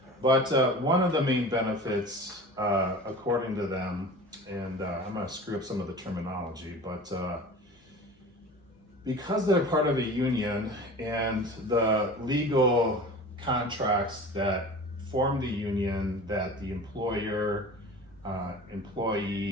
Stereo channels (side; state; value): both; normal; correlation 0.38